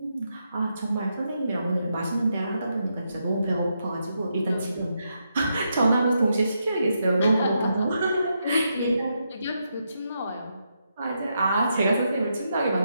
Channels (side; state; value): both; inverted; correlation -0.82